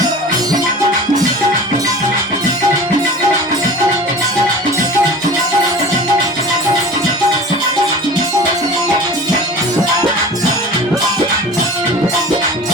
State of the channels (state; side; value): normal; both; correlation 0.38